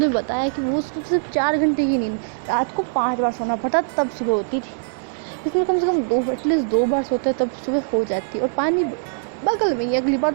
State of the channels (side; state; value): left; silent; digital silence